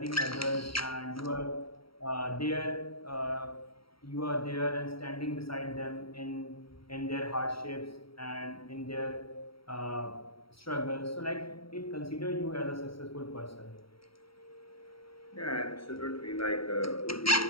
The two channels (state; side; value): late; right; 0.75 ms